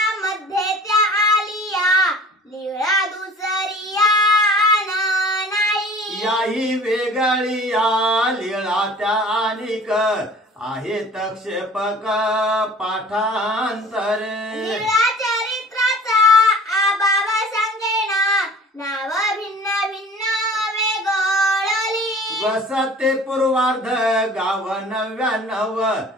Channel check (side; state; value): both; normal; correlation 0.46